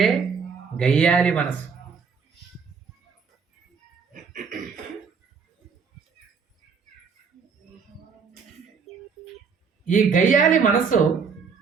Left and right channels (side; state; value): left; quieter; 5.8 dB